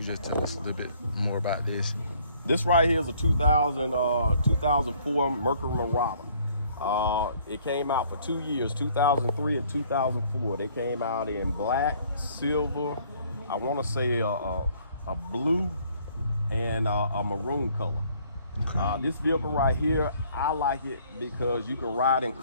just tell us a little bit more about this. This right here is a 2004 Mercury Marauder. It came out for 2 years, 2003 and 2004. They came out in black, silver, I want to say a blue, and a maroon color. Okay. This vehicle right here, I like it because you can ride in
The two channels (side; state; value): both; inverted; correlation -0.60